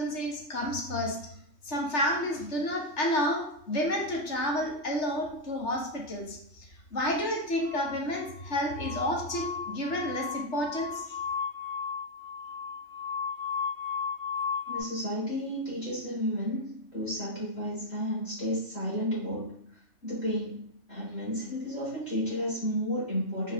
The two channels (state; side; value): late; right; 3.3 ms